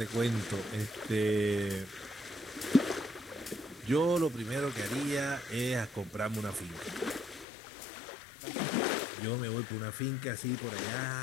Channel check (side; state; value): right; drops out; at 7.5 s